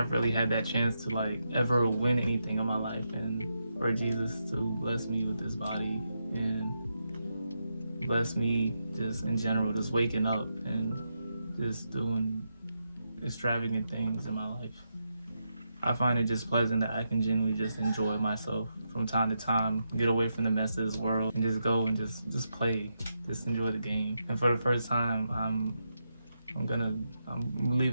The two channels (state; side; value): inverted; both; correlation -0.85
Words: really had that chance to like ever win anything in my life, and for Jesus to bless me with this body and bless me just in general, just waking up and just doing extravagant things in my life. I find it just pleasant that I can genuinely just enjoy myself from time to time, get away from the mess of this world, and just go and just play, just enjoy the game. And for the first time, I'm gonna